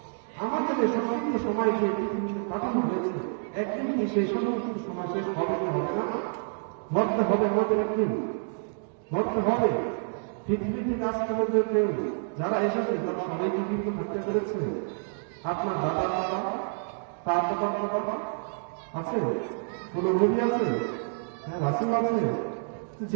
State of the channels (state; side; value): silent; left; 59 dB below the other